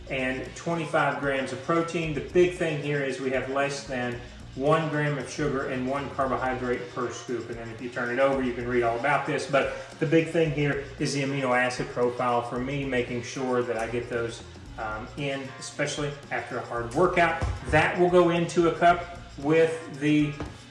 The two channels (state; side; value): identical; both; correlation 1.00